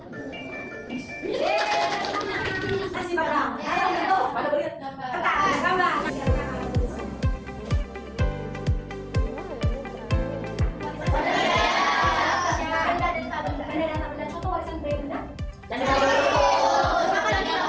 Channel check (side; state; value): both; identical; correlation 1.00